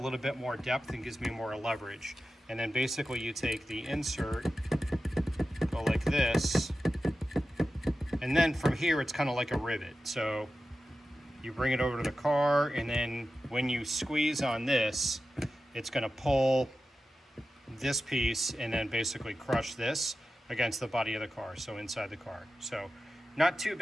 bit more depth and gives me more leverage. And then basically you take the insert, go like this, and then from here it's kind of like a rivet. So you bring it over to the car, and then when you squeeze on this, it's going to pull this piece and then basically crush this against the body of the car, so inside the car. So not too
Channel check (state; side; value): normal; both; correlation 0.93